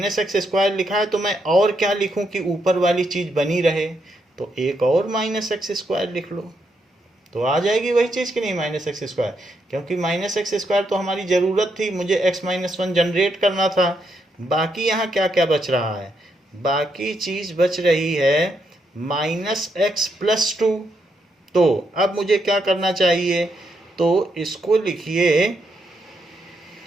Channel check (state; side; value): normal; both; correlation 0.79